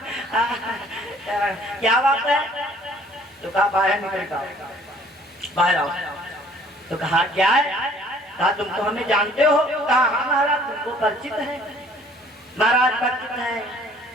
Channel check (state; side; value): normal; both; correlation 0.56